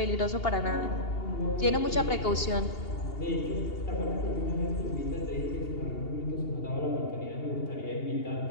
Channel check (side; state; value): right; late; 2.8 ms